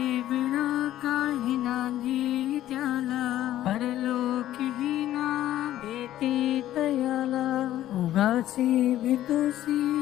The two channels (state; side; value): quieter; right; 13.2 dB